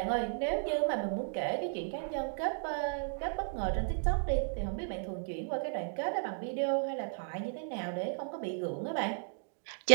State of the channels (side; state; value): left; silent; digital silence